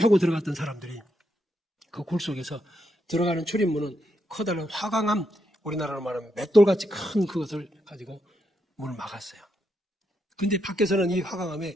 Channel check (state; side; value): normal; both; correlation 0.80